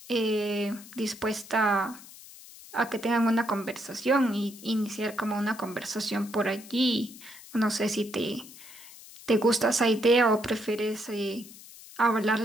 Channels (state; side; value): noise; left; hiss, 18 dB below the sound